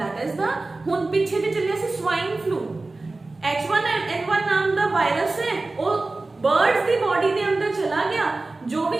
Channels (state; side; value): quieter; left; 3.3 dB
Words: इज द हुन पीछे जे चलिया सी स्वाइन फ्लू, H1N1 नाम दा वायरस है, वो बर्ड्स की बॉडी के अंदर चला गया, जो